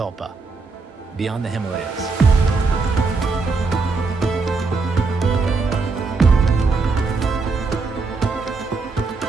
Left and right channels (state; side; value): quieter; left; 4.2 dB